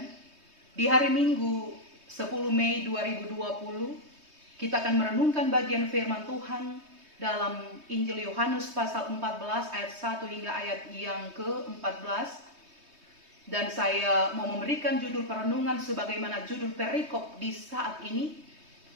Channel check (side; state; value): left; late; 3.2 ms